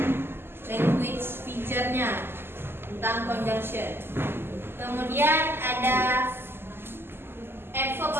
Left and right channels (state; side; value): late; left; 0.11 ms